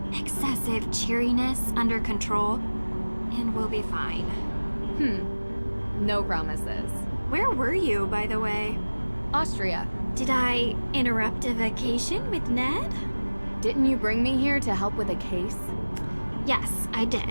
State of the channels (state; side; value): inverted; both; correlation -1.00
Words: excessive cheeriness under control, and we'll be fine. No promises. Where were you, by the way? Austria. Did I interrupt a vacation with Ned? Didn't you bring me here to help with a case? Yes, I